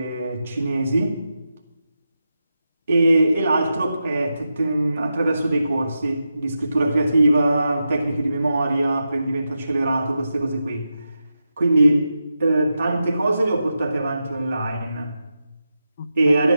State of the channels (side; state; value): both; inverted; correlation -0.89